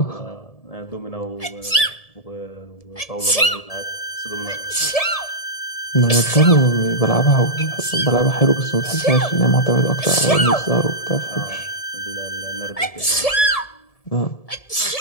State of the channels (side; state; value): right; late; 1.7 ms